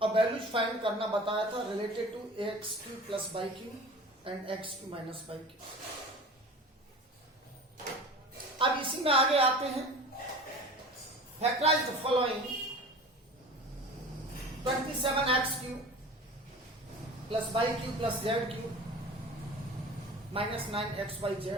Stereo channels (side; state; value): both; normal; correlation 0.38